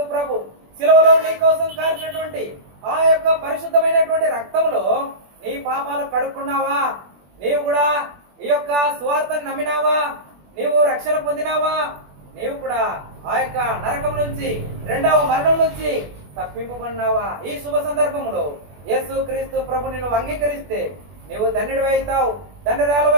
ప్రభు శిలువలో నీ కోసం కార్చినటువంటి ఆ యొక్క పరిశుద్ధమైనటువంటి రక్తంలో నీ పాపాలు కడుక్కున్నావా? నీవు కూడా ఈ యొక్క సువార్తను నమ్మినావా? నీవు రక్షణ పొందినావా? నీవు కూడా ఆ యొక్క నరకం నుంచి, రెండవ మరణం నుంచి తప్పింపబడినావా? ఈ శుభ సందర్భంలో యేసుక్రీస్తు ప్రభు నిన్ను అంగీకరిస్తే నీవు ధన్యుడివి అవుతావు, ధన్యురాలు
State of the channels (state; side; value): late; left; 21 ms